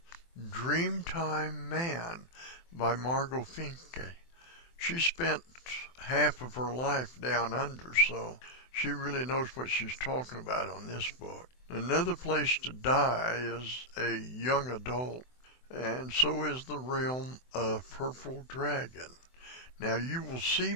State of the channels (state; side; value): late; right; 24 ms